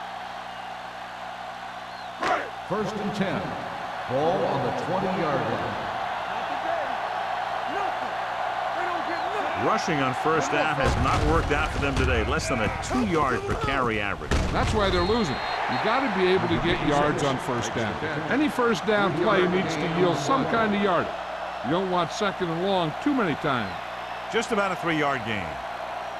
First and 10. Ball on the 20-yard line. Rushing on first down has not worked out for them today. Less than a 2-yard per carry average. That's why they're losing. You got to be able to get yards on first down. Any first down play needs to yield some kind of yardage. You don't want second and long too many times. Just about a 3-yard gain.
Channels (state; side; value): identical; both; correlation 1.00